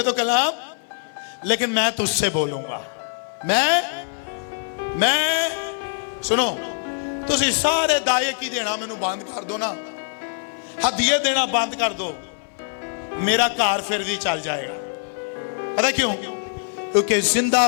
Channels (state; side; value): silent; right; 59 dB below the other